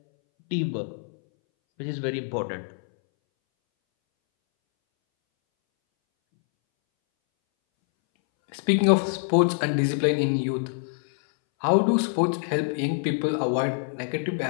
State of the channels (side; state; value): right; silent; 62 dB below the other